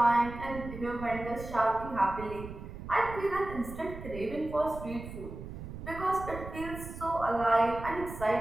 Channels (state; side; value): noise; right; rumble, 11 dB below the sound